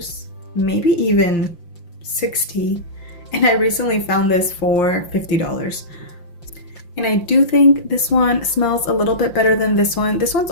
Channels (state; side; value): late; right; 5.8 ms